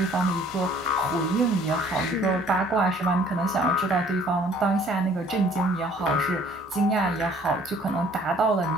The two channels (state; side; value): normal; both; correlation 0.56